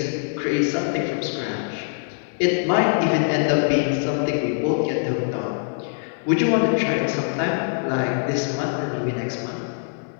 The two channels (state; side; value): silent; right; digital silence